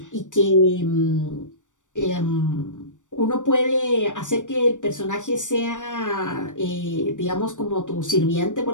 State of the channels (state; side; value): late; right; 0.86 ms